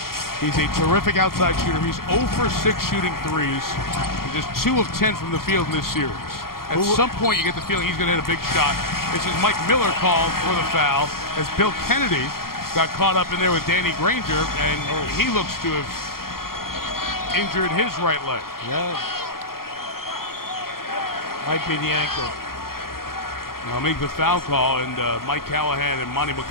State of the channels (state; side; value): late; right; 0.92 ms